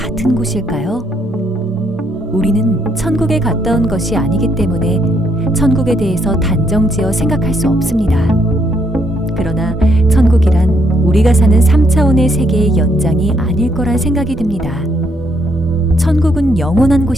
곳일까요? 우리는 천국에 갔다 온 것이 아니기 때문에 천국에 대해서 단정지어 생각할 수 없습니다. 그러나 천국이란 우리가 사는 3차원의 세계의 연장이 아닐 거란 생각이 듭니다. 천국은 영원한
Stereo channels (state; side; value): normal; both; correlation 0.73